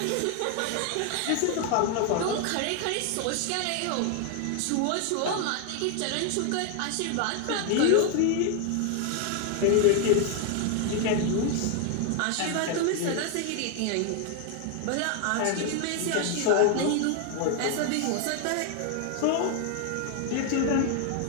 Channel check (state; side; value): different; both; correlation 0.00